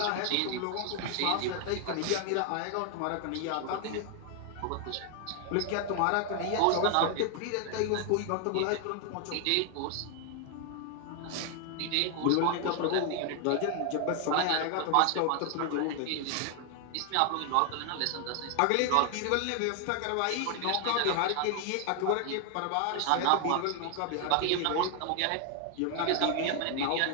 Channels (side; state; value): both; different; correlation 0.00